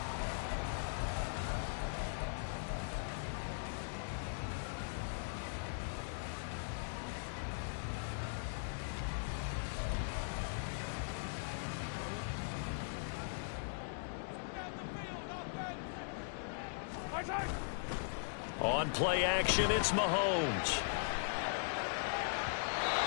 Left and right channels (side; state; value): right; silent; digital silence